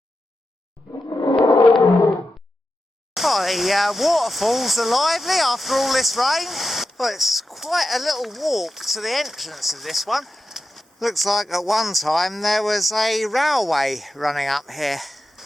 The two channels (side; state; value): both; normal; correlation 0.90